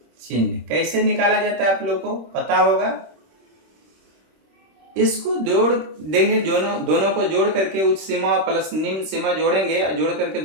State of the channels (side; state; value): left; late; 26 ms